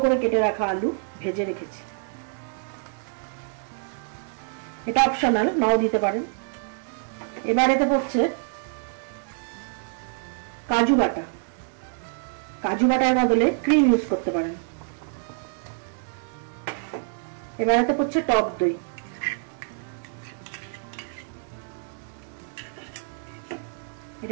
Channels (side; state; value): left; silent; digital silence